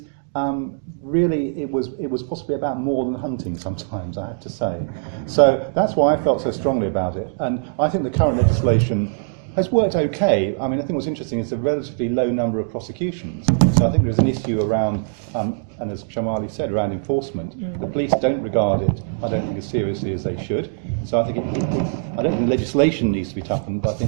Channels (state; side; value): silent; left; digital silence